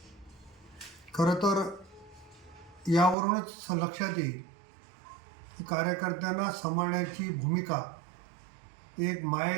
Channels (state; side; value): drops out; left; at 3.2 s